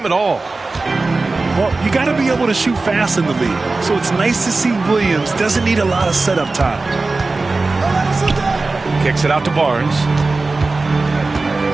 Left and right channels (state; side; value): quieter; left; 3.6 dB